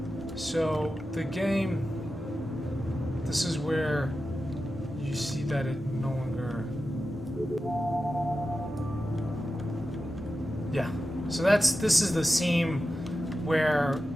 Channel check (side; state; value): both; normal; correlation 0.92